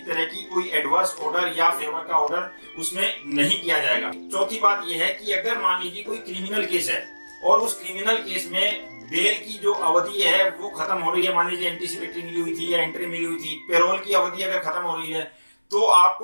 तरह की कोई एडवर्स ऑर्डर या फेवर का ऑर्डर उसमें नहीं किया जाएगा। चौथी बात यह है कि अगर मान लीजिए कोई क्रिमिनल केस है और उस क्रिमिनल केस में बेल की जो अवधि है वो खत्म हो रही है, मान लीजिए एंटीसिपेटरी मिली हुई थी या एंट्री मिली हुई थी, पेरोल की अवधि अगर खत्म हो रही है, तो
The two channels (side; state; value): both; inverted; correlation -1.00